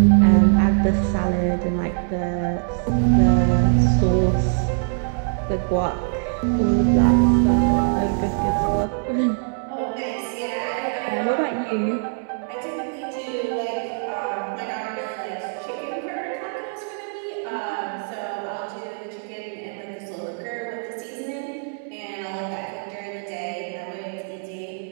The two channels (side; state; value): left; silent; 63 dB below the other